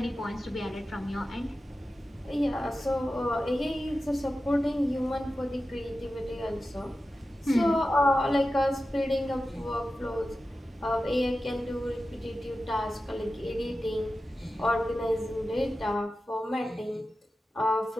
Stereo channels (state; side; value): normal; both; correlation 0.93